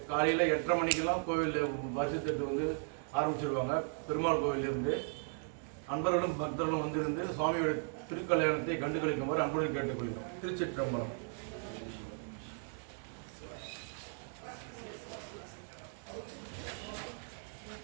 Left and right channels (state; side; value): silent; left; 53 dB below the other